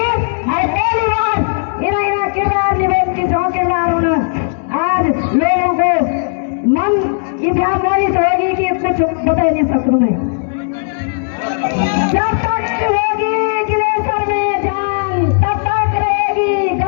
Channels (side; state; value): right; silent; digital silence